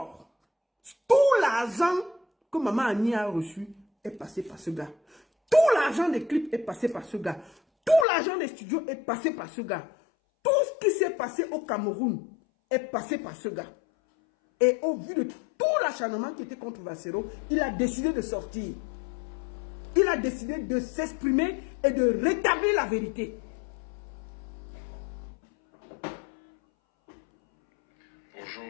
Tout l'argent que Maman Annie a reçu est passé par ce gars. Tout l'argent des clips est passé par ce gars. Tout l'argent des studios est passé par ce gars. Tout ce qui s'est passé au Cameroun est passé par ce gars. Et au vu de tout l'acharnement qui était contre Valsero, il a décidé de sortir. Il a décidé de s'exprimer et de rétablir la vérité. Bonjour.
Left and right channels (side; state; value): right; drops out; at 8.1 s